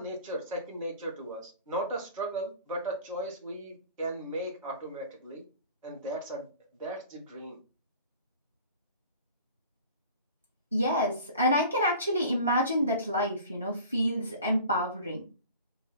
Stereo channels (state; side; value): inverted; both; correlation -0.43